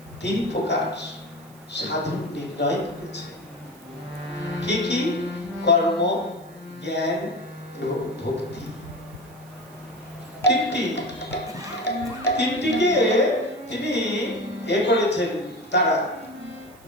3 প্রকার সাধন নির্ণয় করেছে। কি কি? কর্ম, জ্ঞান এবং ভক্তি। তিনটিকে তিনি করেছেন। তারা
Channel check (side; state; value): right; noise; hiss, 26 dB below the sound